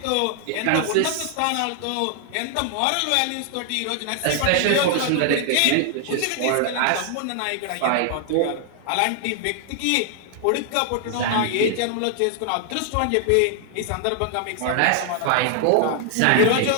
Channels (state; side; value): different; both; correlation 0.00